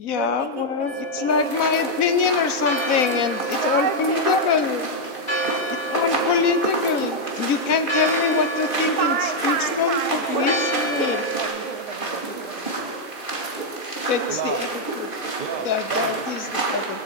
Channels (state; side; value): late; right; 2.5 ms